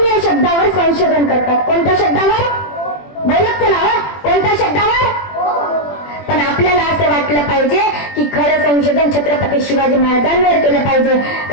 या शब्दावर संशोधन करतात. कोणत्या शब्दावर? बोलत चला, कोणत्या शब्दावर? पण आपल्याला असं वाटलं पाहिजे की खरं संशोधन छत्रपती शिवाजी महाराजांवर केलं पाहिजे.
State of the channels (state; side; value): late; right; 21 ms